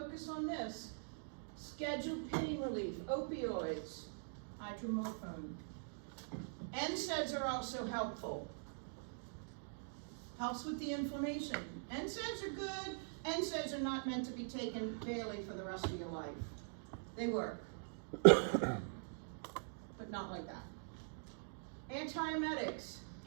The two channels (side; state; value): left; silent; digital silence